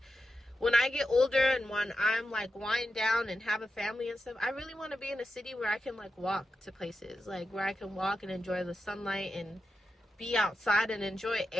when I get older and when I'm like wind down and have a family and stuff, I really want to be in a city where I can like walk to places, like where I can walk and enjoy the sunlight and be outside and enjoy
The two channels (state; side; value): normal; both; correlation 0.89